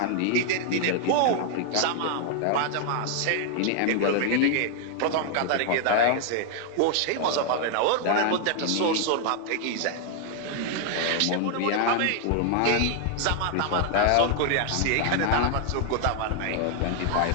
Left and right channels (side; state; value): both; different; correlation 0.00